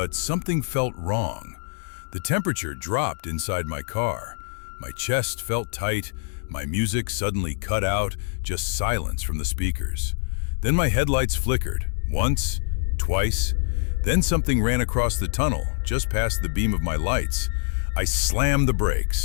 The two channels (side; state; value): right; silent; digital silence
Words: something felt wrong. The temperature dropped inside my car. My chest felt tight, my music suddenly cut out, just silence from the speakers. Then my headlights flickered, once, twice, then something ran across the tunnel, just past the beam of my lights. I slammed the